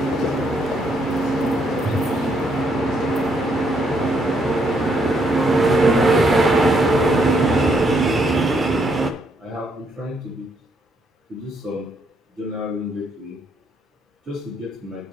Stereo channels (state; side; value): normal; both; correlation 0.73